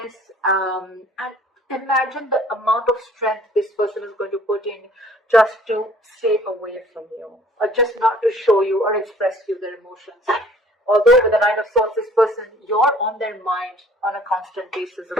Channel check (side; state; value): both; normal; correlation 0.54